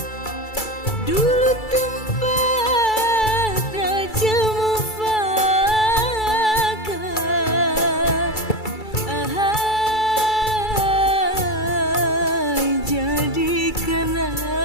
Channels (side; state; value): right; late; 2.3 ms